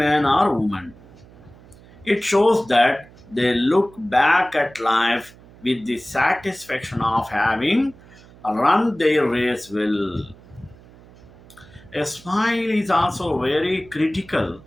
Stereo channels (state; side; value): noise; right; hum, 23 dB below the sound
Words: or woman. It shows that they look back at life with the satisfaction of having run their race well. A smile is also very critical